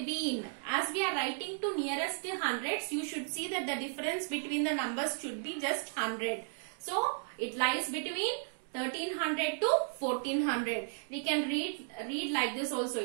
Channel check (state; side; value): silent; left; 55 dB below the other